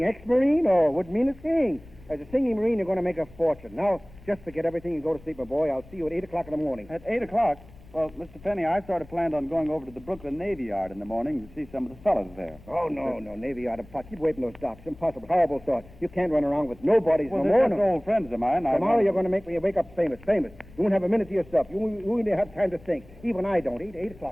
ex-Marine? Oh, wouldn't mean a thing. As a singing Marine, you're going to make a fortune. Now, just forget everything and go to sleep, my boy. I'll see you at 8 o'clock in the morning. At 8 o'clock? Well, Mr. Penny, I sort of planned on going over to the Brooklyn Navy Yard in the morning to see some of the fellas there. Oh, no, Navy Yard of pot. Keep away from those docks. Impossible. Horrible thought. You can't run around with nobodies Well, no they're more. just old friends of mine. Tomorrow you're going to make me wake up famous. You won't have a minute to yourself. You won't even have time to think. Even I don't. 8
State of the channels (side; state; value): left; noise; rumble, 21 dB below the sound